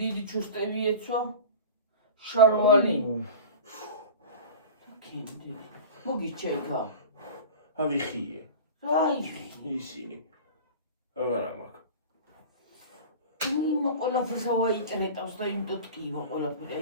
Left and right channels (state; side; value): inverted; both; correlation -0.35